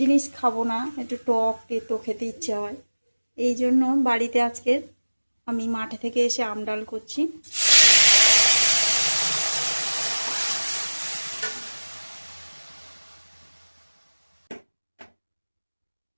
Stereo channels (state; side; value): inverted; both; correlation -1.00